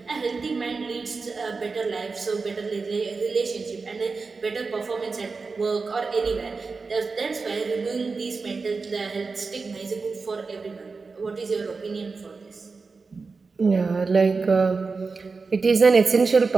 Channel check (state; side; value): quieter; left; 4.4 dB